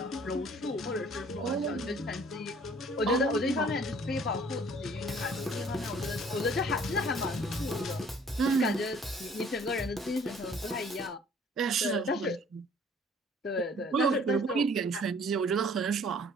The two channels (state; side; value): normal; both; correlation 0.55